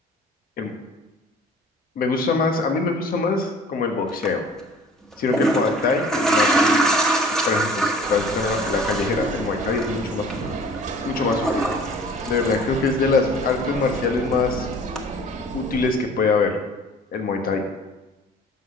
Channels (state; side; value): normal; both; correlation 0.48